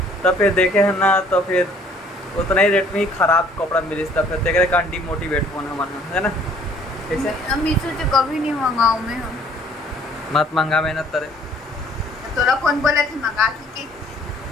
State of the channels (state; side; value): normal; both; correlation 0.58